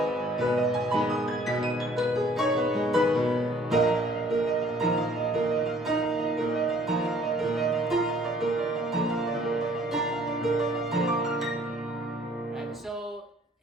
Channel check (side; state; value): both; normal; correlation 0.59